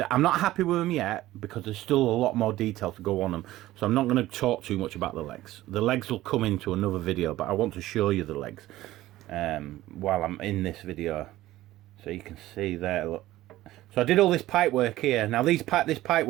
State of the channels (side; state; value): left; quieter; 15.8 dB